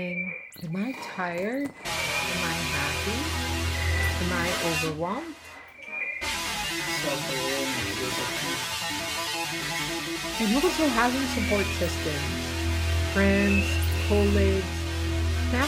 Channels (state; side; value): identical; both; correlation 1.00